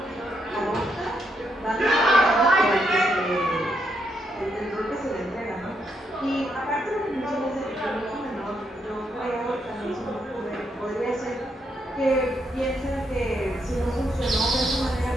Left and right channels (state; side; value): normal; both; correlation 0.78